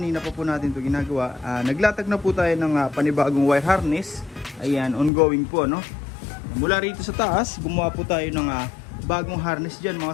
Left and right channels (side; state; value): right; drops out; at 5.1 s